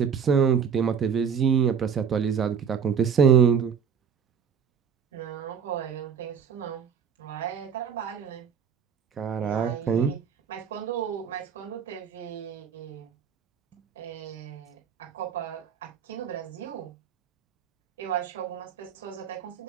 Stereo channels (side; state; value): left; quieter; 7.2 dB